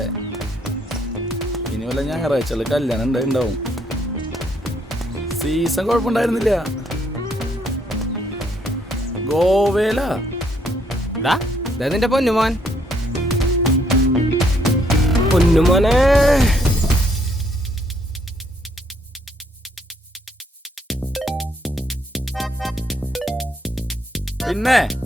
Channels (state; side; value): normal; both; correlation 0.70